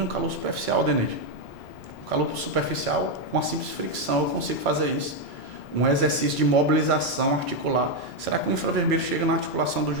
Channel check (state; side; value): normal; both; correlation 0.04